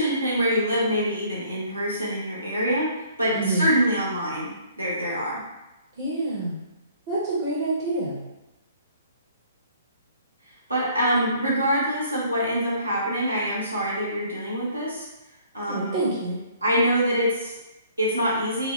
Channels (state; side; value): inverted; both; correlation -0.58